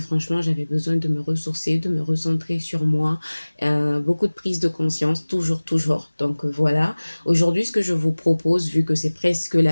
j'avais besoin de me ressourcer, de me recentrer sur moi. Beaucoup de prise de conscience, toujours, toujours. Donc, voilà. Aujourd'hui, ce que je vous propose, vu que c'est presque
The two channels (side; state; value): both; inverted; correlation -1.00